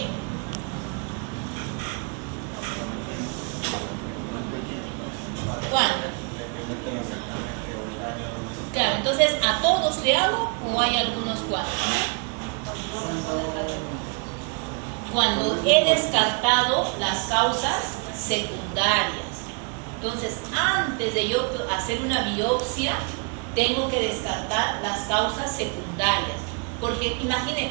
¿Cuándo? Claro, entonces, ¿a todos le hago o hay algunos cuantos? Cuando he descartado las causas secundarias. Entonces, antes de yo hacer una biopsia, tengo que descartar las causas secundarias. Porque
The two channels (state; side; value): quieter; left; 35.7 dB